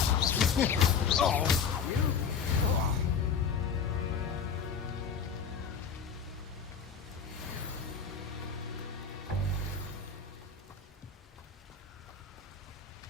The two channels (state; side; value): quieter; right; 6.4 dB